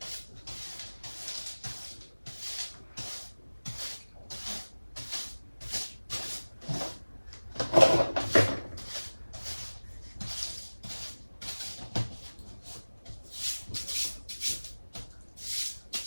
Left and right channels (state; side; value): inverted; both; correlation -1.00